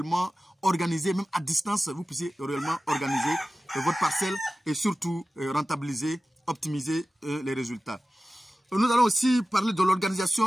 organiser, même à distance, vous puissiez réellement organiser votre parcelle et surtout rentabiliser, optimiser les résultats. Nous allons aussi parler de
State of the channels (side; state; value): both; normal; correlation 0.96